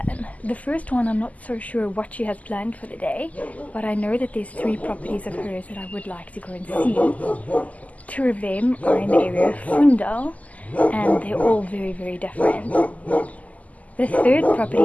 The first one, I'm not so sure what she has planned for the day, but I know that there's 3 properties of hers that I would like to go and see. 2 of them are in the area of Fundão, and they're all very, very different. The 3rd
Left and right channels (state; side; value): late; right; 0.074 ms